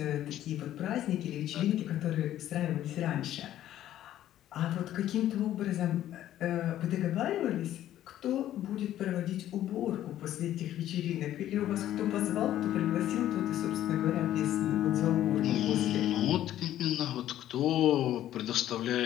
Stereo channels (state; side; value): quieter; right; 12.5 dB